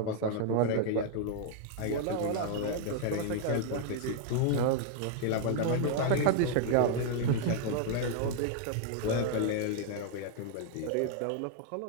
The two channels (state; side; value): different; both; correlation 0.00